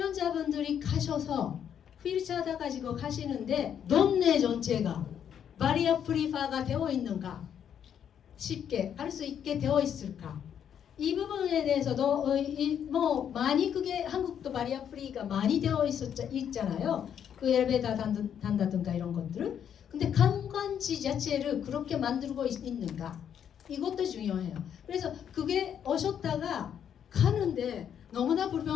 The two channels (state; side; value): quieter; right; 8.8 dB